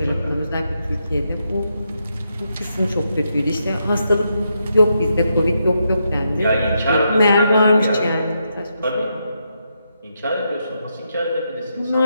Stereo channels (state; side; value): inverted; both; correlation -0.82